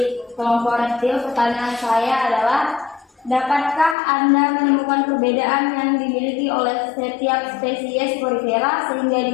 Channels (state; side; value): drops out; right; at 4.0 s